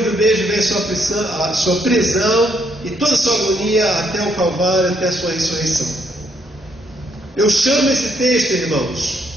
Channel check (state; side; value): normal; both; correlation 0.72